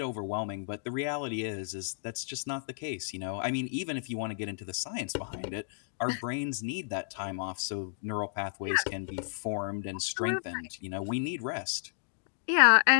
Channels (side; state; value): right; silent; digital silence